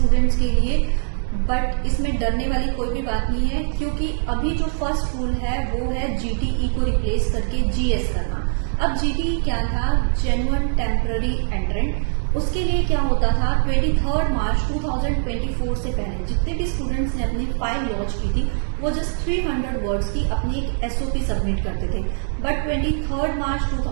के लिए, बट इसमें डरने वाली कोई भी बात नहीं है, क्योंकि अभी जो फर्स्ट रूल है वो है जीटीई को रिप्लेस करके जीएस करना। अब जीटीई क्या था? Genuine temporary एंट्रेंट। उसके लिए क्या होता था? 23 मार्च 2024 से पहले जितने भी स्टूडेंट्स ने अपनी फाइल लॉन्च की थी वो जस्ट 300 वर्ड्स की अपनी एक एसओपी सबमिट करते थे। बट 23 मार्च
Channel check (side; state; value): left; silent; digital silence